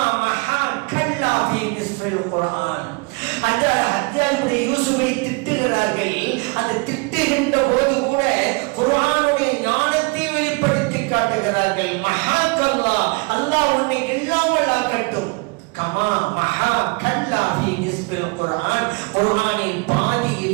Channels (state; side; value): quieter; left; 29.5 dB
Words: மஹாக்கல்லா ஃபீ நிஸ்ஃபில் குர்ஆன். அந்த ஹஜ்ஜாஜ் இப்னு யூசுஃபை திட்டுகிறார்கள். அந்த திட்டுகின்ற போது கூட குர்ஆனுடைய ஞானத்தை வெளிப்படுத்தி காட்டுகிறார்கள். மஹாக்கல்லாஹ், அல்லாஹ் உன்னை இல்லாமல் ஆக்கட்டும். கமா மஹா கல்லா ஃபீ நிஸ்பில் குர்ஆன், குர்ஆனின்